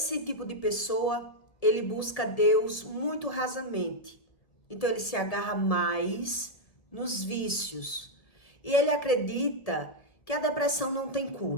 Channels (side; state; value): right; late; 1.7 ms